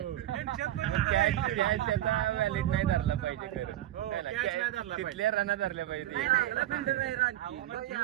त्यांच्यात पण त्याचा व्हॅलिड नाही धरला पाहिजे खरं. हो, है ना? catch नाही धरला पाहिजे. तिथल्या रना धरल्या पाहिजे. अहो, मग ते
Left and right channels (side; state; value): left; quieter; 13.4 dB